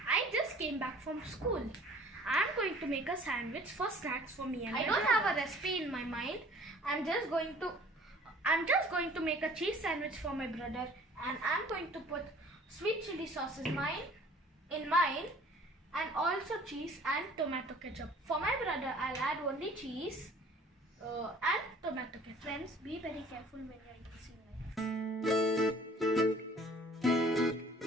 I just came back from school. I'm going to make a sandwich for snacks for me and I don't have a recipe in my mind. I'm just going to make a cheese sandwich for my brother, and I'm going to put sweet chili sauce in mine and also cheese and tomato ketchup. For my brother, I'll add only cheese and tomato ketchup. Friends, be very careful when you're using knife.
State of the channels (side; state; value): both; normal; correlation 0.51